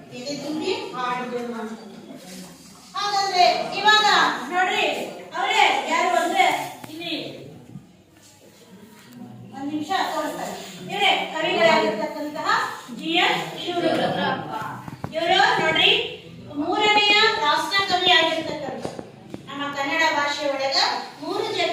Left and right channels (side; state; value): both; identical; correlation 1.00